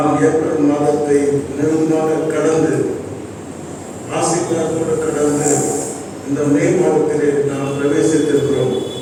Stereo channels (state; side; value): identical; both; correlation 1.00